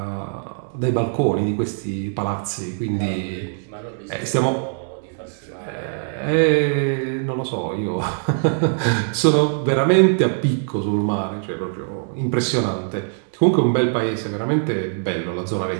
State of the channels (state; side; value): silent; left; 64 dB below the other